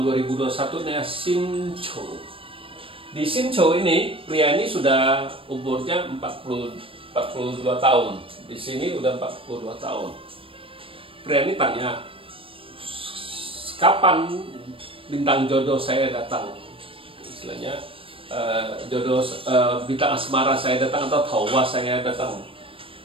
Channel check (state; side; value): late; left; 0.26 ms